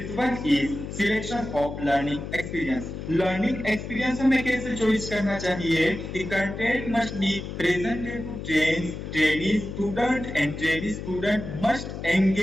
one is selection of learning experience. Learning experience हमें कैसे चॉइस करना चाहिए कि content must be presented to trainee student and trainee student must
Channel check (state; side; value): noise; left; hum, 8 dB below the sound